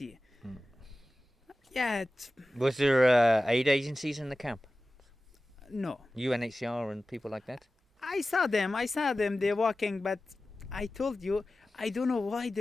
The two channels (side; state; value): both; normal; correlation 0.95